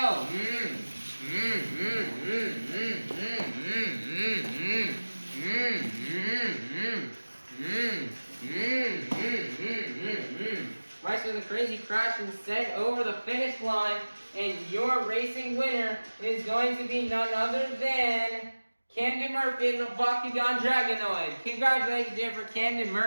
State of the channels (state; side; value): inverted; both; correlation -1.00